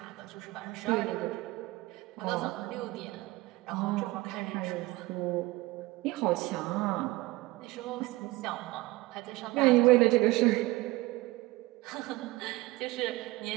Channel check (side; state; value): left; quieter; 20.3 dB